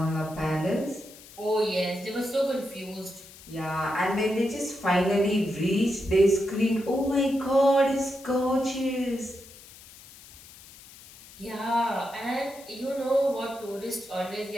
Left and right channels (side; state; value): left; noise; hiss, 20 dB below the sound